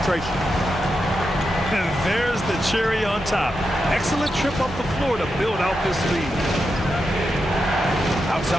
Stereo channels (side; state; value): both; normal; correlation 0.87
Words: And there's the cherry on top. Excellent trip up the floor to build out this lead.